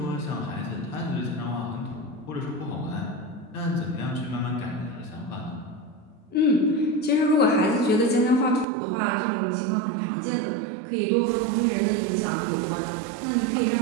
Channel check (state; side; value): drops out; left; at 8.7 s